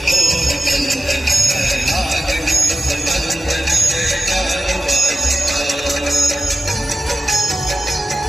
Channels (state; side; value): normal; both; correlation 0.95